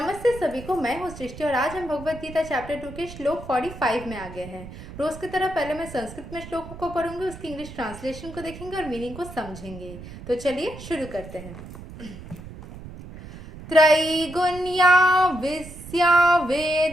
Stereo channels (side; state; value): right; noise; rumble, 14 dB below the sound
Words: सभी को। मैं हूँ सृष्टि और आज हम भगवत गीता चैप्टर 2 के श्लोक 45 में आ गए हैं। रोज की तरह पहले मैं संस्कृत में श्लोक को पढ़ूंगी, उसकी इंग्लिश ट्रांसलेशन को देखेंगे और मीनिंग को समझेंगे। तो चलिए शुरू करते हैं। त्रैगुण्या विस्या